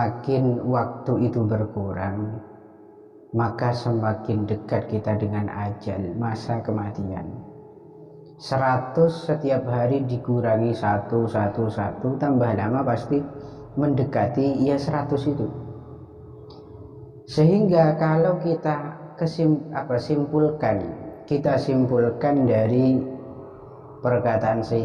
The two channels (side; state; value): both; identical; correlation 1.00